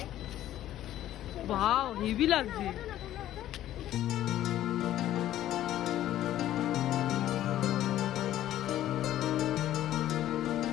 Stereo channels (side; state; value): right; quieter; 12.9 dB